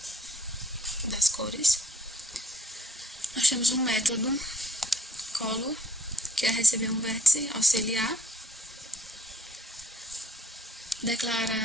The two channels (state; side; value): normal; both; correlation 0.64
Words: das cores. Nós temos um método color, que é receber um vértice auxiliar,